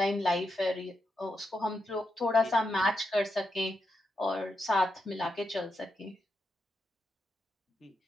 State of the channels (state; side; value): normal; both; correlation 0.85